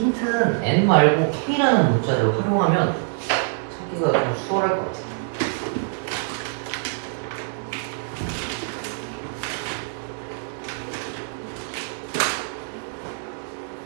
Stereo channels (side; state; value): left; silent; 62 dB below the other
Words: N 말고 K라는 문자를 활용하면 찾기가 좀 수월할 것 같아.